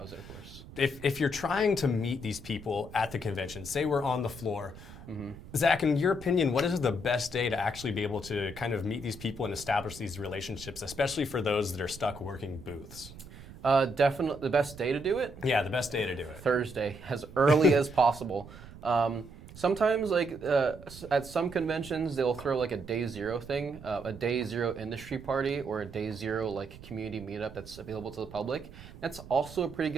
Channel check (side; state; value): right; noise; rumble, 16 dB below the sound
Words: it, of course. If you're trying to meet these people at the convention, say we're on the floor, Zach, in your opinion, what is the best day to actually be able to kind of meet these people and establish these relationships, especially for those that are stuck working booths? Definitely the best day to do it? Yeah, the best day to do it. Thursday, as early as possible. Sometimes, at some conventions, they'll throw like a day zero thing, a day zero industry party, or a day zero like community meetup that's available to the public. That's also a pretty